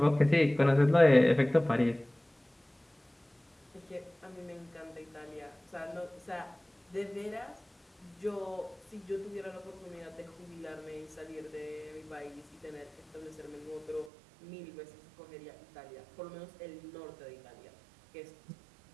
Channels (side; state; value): left; drops out; at 14.1 s